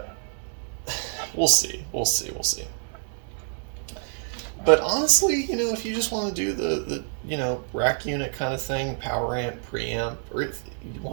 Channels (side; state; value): left; silent; 58 dB below the other